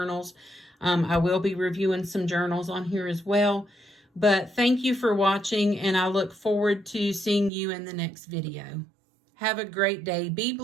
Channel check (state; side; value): drops out; left; at 7.5 s